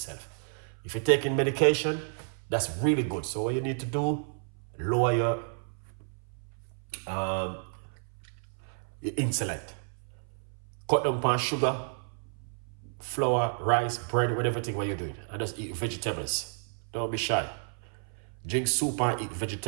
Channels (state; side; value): silent; left; 56 dB below the other